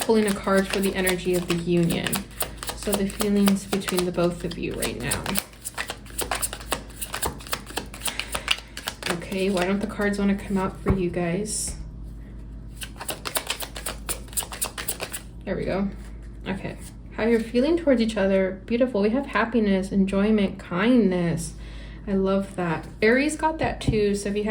a card for the energy of the union. So the feelings between the both of you right now. Okay, why don't the cards want to come out for you guys? There we go. Okay, how you're feeling towards each other. Beautiful. We have happiness, enjoyment, kindness. I love that. Aries got that too. So if you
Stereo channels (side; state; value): both; identical; correlation 1.00